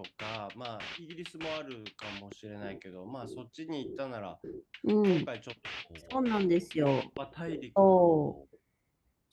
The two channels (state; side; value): identical; both; correlation 1.00